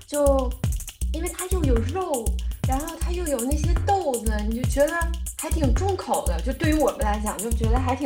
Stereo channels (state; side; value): identical; both; correlation 1.00